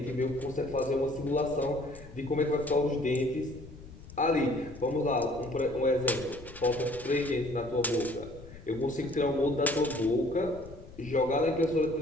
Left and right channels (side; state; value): left; noise; rumble, 17 dB below the sound